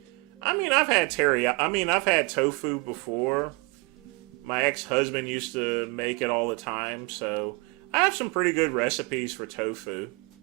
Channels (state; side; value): quieter; left; 29.6 dB